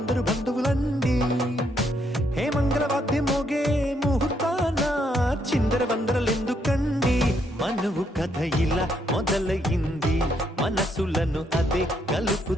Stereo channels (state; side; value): normal; both; correlation 0.74